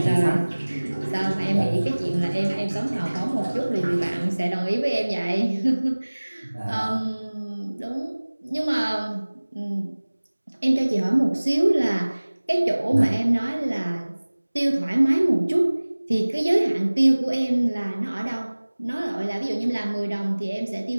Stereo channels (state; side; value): inverted; both; correlation -1.00